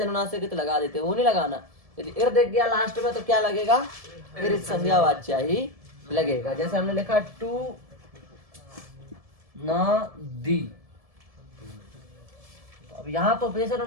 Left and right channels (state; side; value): late; left; 1.7 ms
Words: लगा देते हैं, वो नहीं लगाना। यदि इर दिख गया लास्ट में तो क्या लगेगा, इरित संज्ञा वाच्या ही लगेगा। जैसे हमने लिखा टू न दी, तो अब यहाँ तो उपदेश